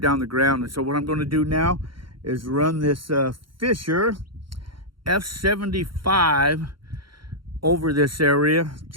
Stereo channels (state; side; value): late; left; 0.73 ms